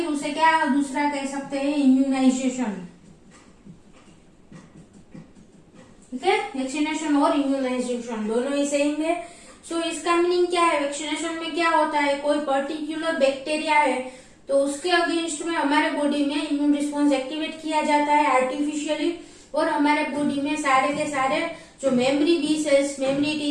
उसे क्या दूसरा कह सकते हैं? इम्यूनाइजेशन. ठीक है, वैक्सीनेशन और इम्यूनाइजेशन दोनों ही सेम है. सो इसका मीनिंग क्या है? वैक्सीनेशन में क्या होता है? कोई पर्टिकुलर बैक्टीरिया है तो उसके अगेंस्ट में हमारे बॉडी में इम्यून रिस्पॉन्स एक्टिवेट किया जाता है आर्टिफिशियली, और हमारे बॉडी में सारे के सारे जो memory B cells, memory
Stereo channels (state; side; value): identical; both; correlation 1.00